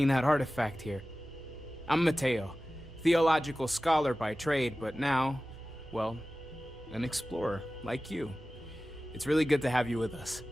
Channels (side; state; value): both; normal; correlation 0.96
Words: that artifact here. I'm Mateo, theological scholar by trade, but now, well, an explorer like you. It's really good to have you with us.